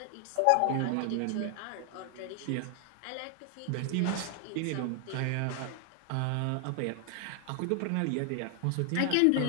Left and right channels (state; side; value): different; both; correlation 0.00